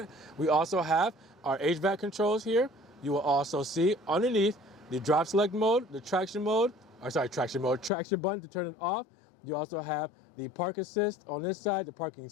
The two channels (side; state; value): right; drops out; at 7.9 s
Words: We also have our HVAC controls here. You will also see underneath the drop select mode, the traction button to turn it off. You also have the park assist on this side, the parking